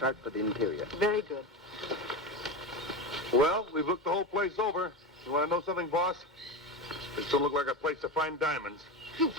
for the interior. Very good. Well, we've looked the whole place over. You want to know something, boss? This don't look like a place to find diamonds. You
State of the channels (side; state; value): both; normal; correlation 0.21